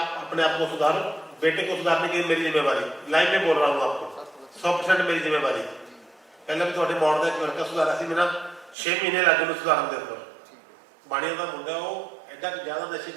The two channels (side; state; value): left; drops out; at 8.8 s